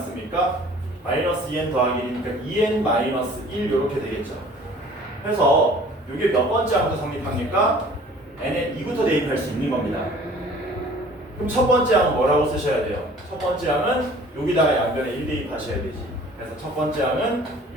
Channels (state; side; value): normal; both; correlation 0.50